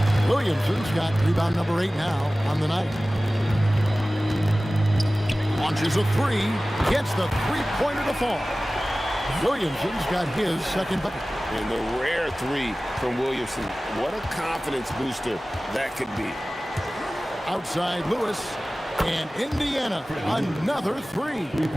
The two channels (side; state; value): both; normal; correlation 0.97